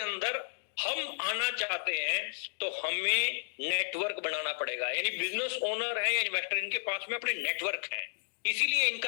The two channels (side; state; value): right; silent; digital silence